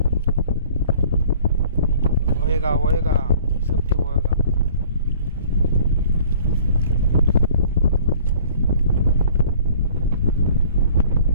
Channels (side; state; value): both; inverted; correlation -0.52